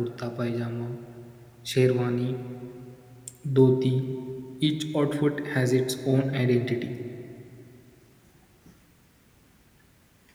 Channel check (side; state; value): both; identical; correlation 1.00